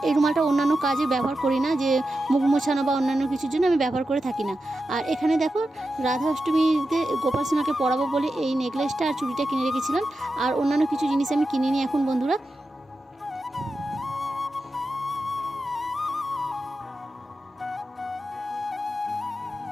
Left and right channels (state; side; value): normal; both; correlation 0.90